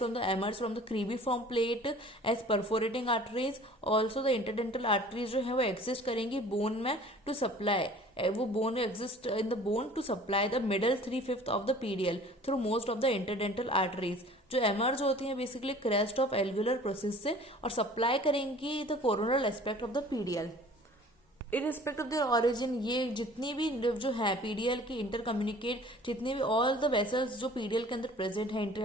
the emerges from the cribriform plate as perforating arteries. Also the interdental arteries जो है वो एग्जिस्ट करेंगी बोन में टू सप्लाई, वो bone exist in the bone to supply the middle 3/5 of the PDL through most of the interdental arteries, जो emerge होती हैं basically crest of alveolar process से और सप्लाई करेंगी the coronal aspect of the PDL. इरिस्पेक्ट of their origin, ये जितनी भी जो है पीडीएल की इंटर कम्युनिकेट, जितनी भी ऑल द वेसल्स जो पीडीएल के अंदर प्रेजेंट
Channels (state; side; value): normal; both; correlation 0.48